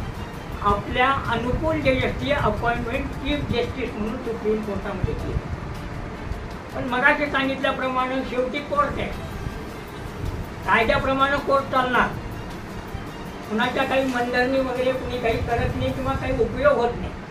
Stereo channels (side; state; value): both; identical; correlation 1.00